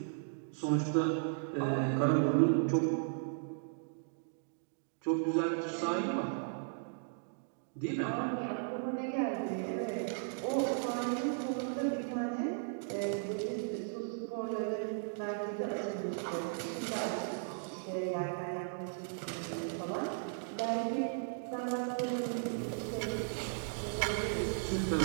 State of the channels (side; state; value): left; silent; digital silence